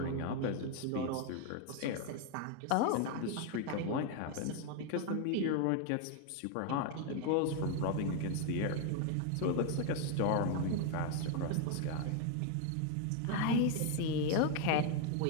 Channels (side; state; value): both; different; correlation 0.01